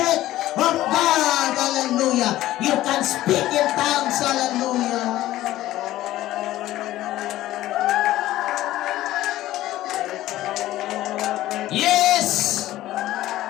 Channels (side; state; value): right; quieter; 15.0 dB